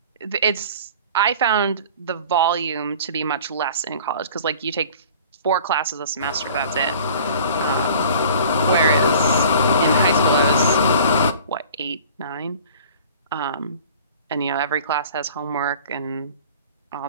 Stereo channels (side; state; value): both; inverted; correlation -0.46